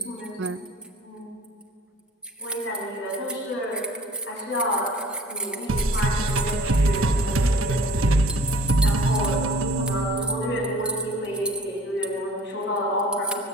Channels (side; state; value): both; normal; correlation 0.50